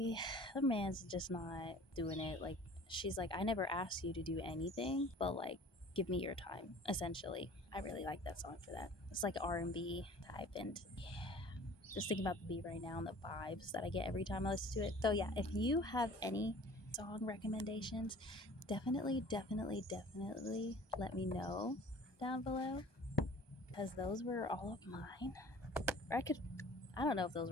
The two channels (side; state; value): right; late; 1.2 ms